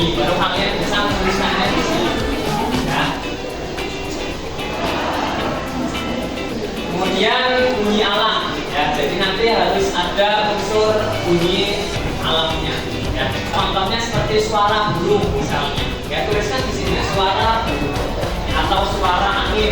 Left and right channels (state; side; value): identical; both; correlation 1.00